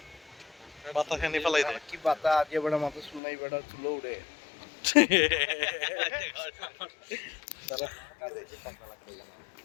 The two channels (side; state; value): right; drops out; at 3.2 s